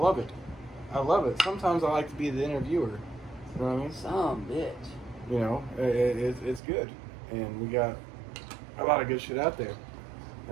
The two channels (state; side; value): drops out; left; at 6.6 s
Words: it. I love it. Sometimes I like to be the interviewer. You know what I mean? Some bitch. You know, it's good. And we got a lot of good shit out there.